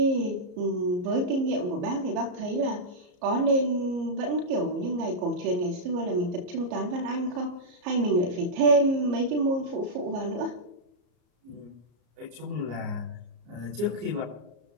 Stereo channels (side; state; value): left; late; 34 ms